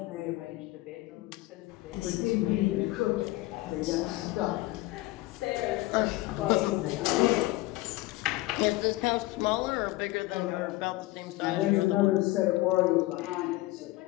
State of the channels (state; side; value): quieter; right; 19.1 dB